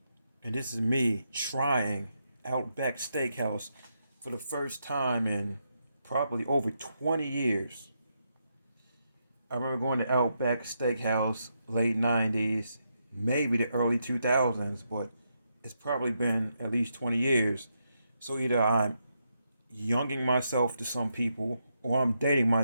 And this is me trying Outback Steakhouse for the first time in probably over 20 years. I remember going to Outback Steakhouse late 90s, maybe the early 2000s, but it's probably been at least 20 years. So either I'm younging myself to some people or I'm dating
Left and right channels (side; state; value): both; inverted; correlation -0.81